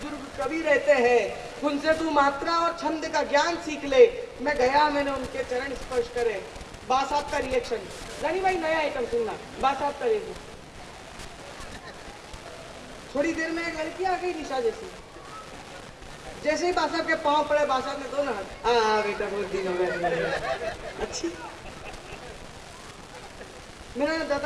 कवि रहते हैं, उनसे तू मात्रा और छंद का ज्ञान सीख ले। मैं गया, मैंने उनके चरण स्पर्श करे। बा साहब का रिएक्शन, रानी भाई नया आइटम सुनना, बा साहब का रिएक्शन। थोड़ी देर में एक लड़की आ गई निशा जैसी, जैसे ही बा साहब के पांव पड़े, बा साहब ने दोनों हाथ, बेटा बहुत दिन हो गए, अच्छी। मैंने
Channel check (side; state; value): both; identical; correlation 1.00